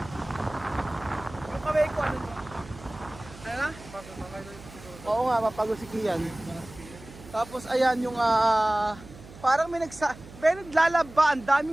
Yung kamay ko ano? Ano na? Oo nga, mapagod si Kian. Tapos ayan yung parang may naglalaba, ang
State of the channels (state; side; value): noise; right; hum, 18 dB below the sound